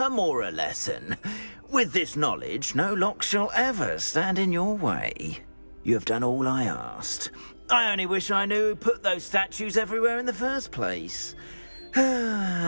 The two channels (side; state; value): both; inverted; correlation -1.00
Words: lesson. With this knowledge, no lock shall ever stand in your way. You have done all I asked. I only wish I knew who put those statues everywhere in the first place.